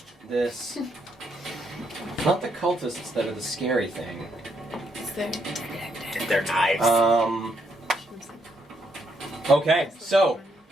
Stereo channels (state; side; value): normal; both; correlation 0.76